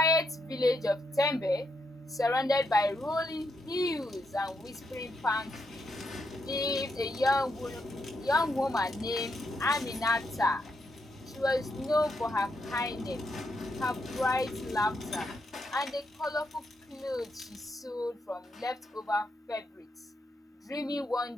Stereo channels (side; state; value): both; normal; correlation 0.80